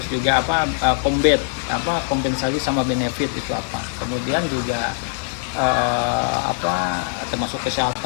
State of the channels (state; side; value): silent; right; digital silence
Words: juga kompensasi sama benefit itu apa. Kemudian juga termasuk